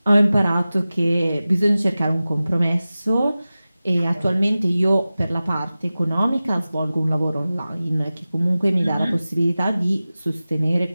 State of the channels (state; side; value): inverted; both; correlation -0.96